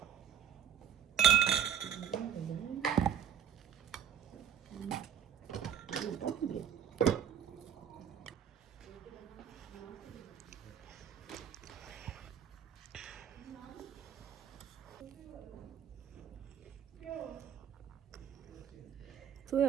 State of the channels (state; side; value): quieter; left; 9.0 dB